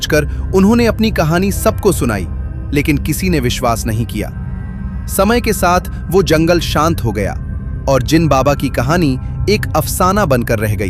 उन्होंने अपनी कहानी सबको सुनाई, लेकिन किसी ने विश्वास नहीं किया। समय के साथ वो जंगल शांत हो गया और जिन बाबा की कहानी एक अफसाना बनकर रह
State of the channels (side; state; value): both; identical; correlation 1.00